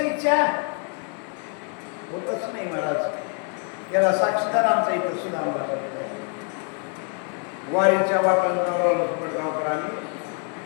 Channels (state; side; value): quieter; right; 39.1 dB